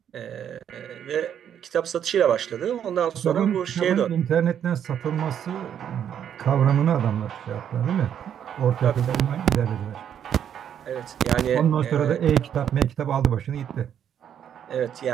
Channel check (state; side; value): quieter; left; 9.2 dB